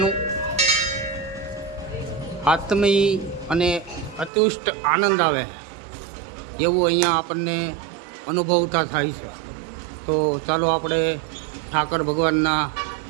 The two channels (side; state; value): left; drops out; at 4.3 s